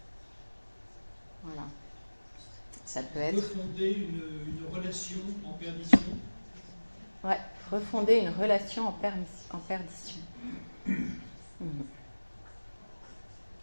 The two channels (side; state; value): both; inverted; correlation -1.00